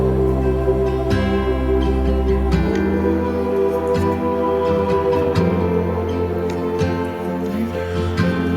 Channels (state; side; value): identical; both; correlation 1.00